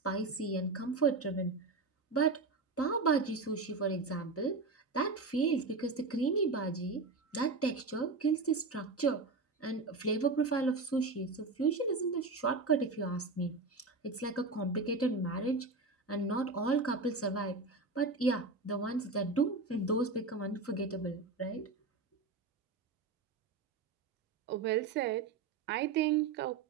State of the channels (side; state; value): left; quieter; 3.9 dB